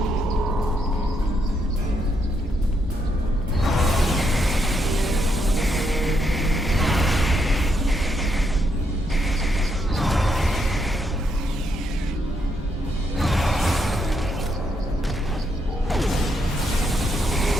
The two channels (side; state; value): both; normal; correlation 0.77